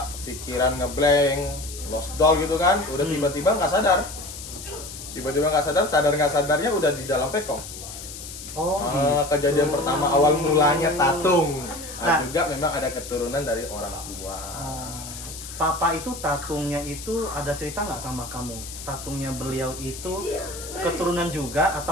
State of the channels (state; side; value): noise; left; hiss, 11 dB below the sound